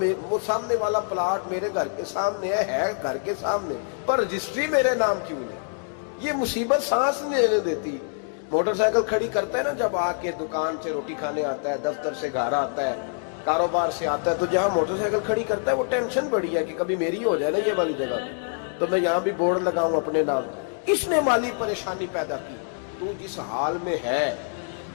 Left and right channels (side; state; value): right; silent; 58 dB below the other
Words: وہ سامنے والا پلاٹ میرے گھر کے سامنے ہے گھر کے سامنے، پر رجسٹری میرے نام کیوں نہیں؟ یہ مصیبت سانس نہیں لینے دیتی۔ موٹر سائیکل کھڑی کرتا ہے نا جب آ کے دکان سے روٹی کھانے آتا ہے، دفتر سے گھر آتا ہے، کاروبار سے آتا ہے، تو جہاں موٹر سائیکل کھڑی کرتا ہے وہ ٹینشن بڑی ہے کہ کبھی میری ہو جائے نا یہ والی جگہ تو میں یہاں بھی بورڈ لگاؤں اپنے نام۔ اس نے مالی پریشانی پیدا کی۔ تو جس حال میں ہے،